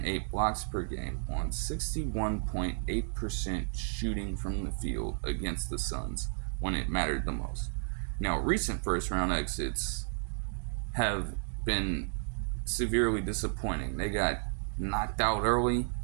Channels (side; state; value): left; silent; 56 dB below the other